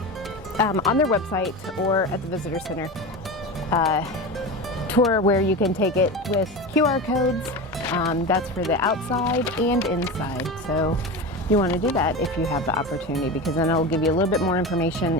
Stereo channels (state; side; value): normal; both; correlation 0.25